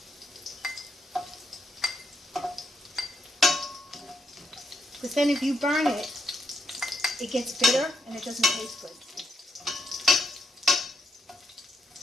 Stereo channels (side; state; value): both; normal; correlation 0.77